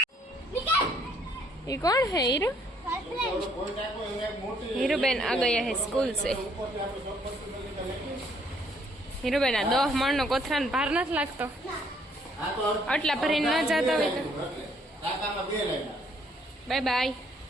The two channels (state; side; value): normal; both; correlation 0.66